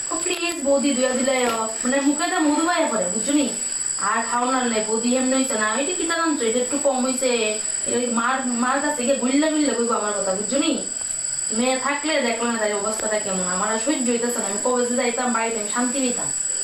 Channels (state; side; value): identical; both; correlation 1.00